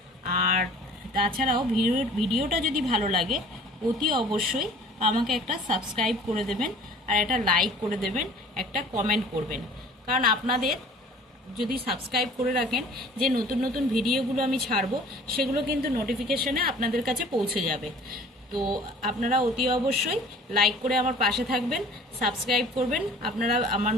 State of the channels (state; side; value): normal; both; correlation 0.48